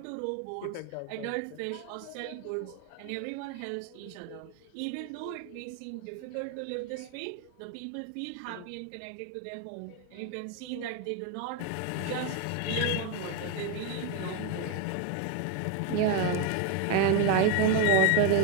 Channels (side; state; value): both; different; correlation 0.01